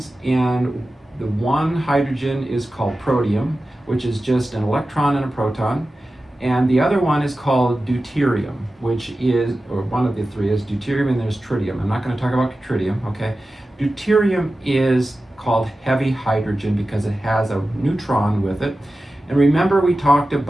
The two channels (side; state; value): both; normal; correlation 0.94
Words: and the one hydrogen is called protium, which is just an electron and a proton, and the other one is called deuterium, which is, or one of the 3 is deuterium, and there's tritium. I'm not going to talk about tritium, okay? Deuterium is called heavy hydrogen because it has a neutron with it. And remember, we talked